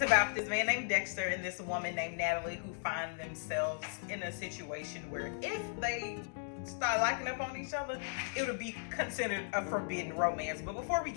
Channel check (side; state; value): right; silent; digital silence